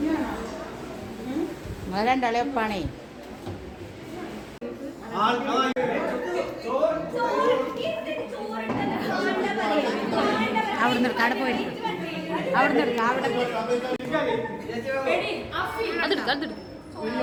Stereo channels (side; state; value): both; identical; correlation 1.00